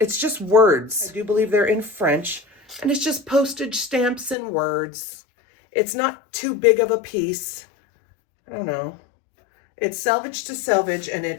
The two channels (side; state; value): right; drops out; at 4.4 s